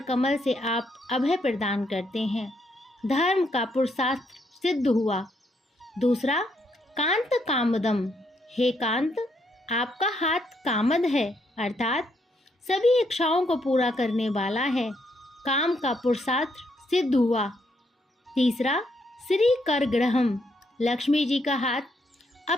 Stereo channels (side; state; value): both; normal; correlation 0.75